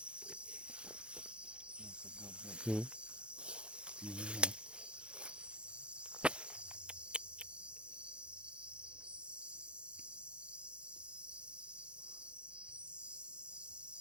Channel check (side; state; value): left; late; 0.056 ms